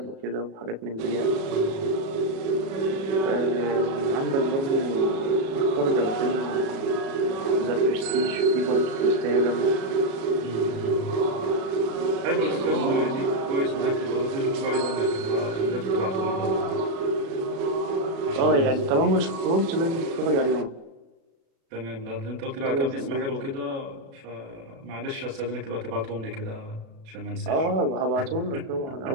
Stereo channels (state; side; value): late; left; 37 ms